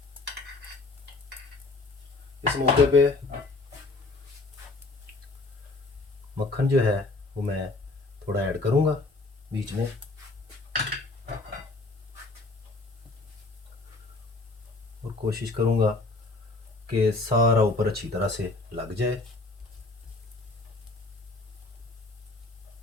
इस मौके पे मक्खन जो है वो मैं थोड़ा ऐड करूँगा बीच में। और कोशिश करूँगा कि सारा ऊपर अच्छी तरह से लग जाए।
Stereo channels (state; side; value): quieter; right; 3.4 dB